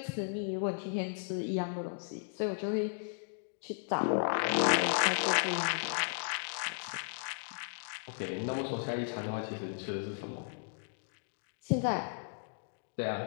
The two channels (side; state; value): right; silent; digital silence